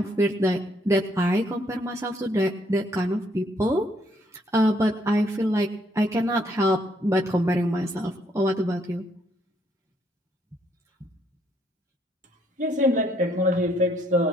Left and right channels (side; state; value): both; normal; correlation 0.70